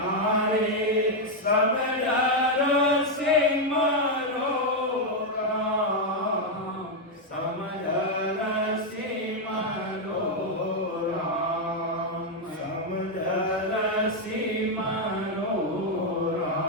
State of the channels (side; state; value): both; normal; correlation 0.01